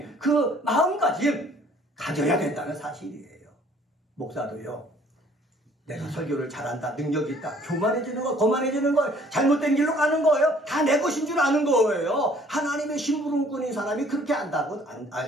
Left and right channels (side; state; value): both; normal; correlation 0.57